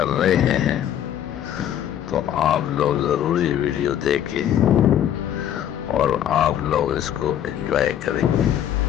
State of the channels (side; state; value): right; quieter; 10.5 dB